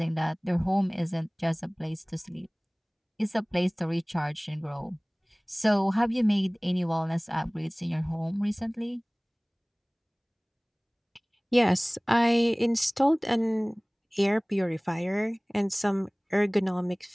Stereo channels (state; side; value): identical; both; correlation 1.00